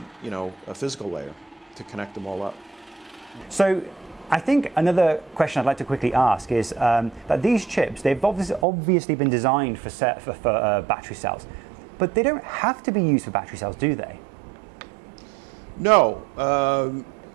physical layer to connect them all up. So I think another question I'd like to quickly ask is that these chips, they've obviously been designed for battery cells, but they don't have to be used for battery cells, do they? No.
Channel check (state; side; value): drops out; left; at 8.7 s